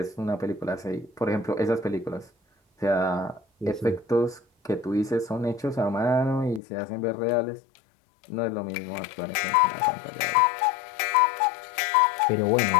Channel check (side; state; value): right; drops out; at 6.6 s